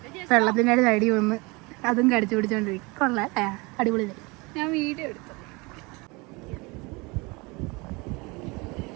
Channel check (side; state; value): left; quieter; 26.2 dB